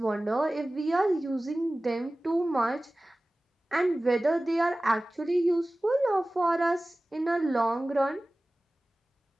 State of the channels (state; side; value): normal; both; correlation 0.97